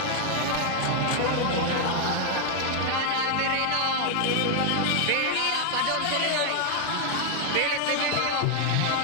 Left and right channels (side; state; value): both; different; correlation 0.00